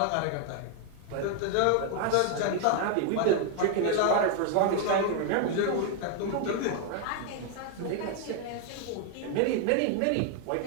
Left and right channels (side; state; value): both; different; correlation 0.00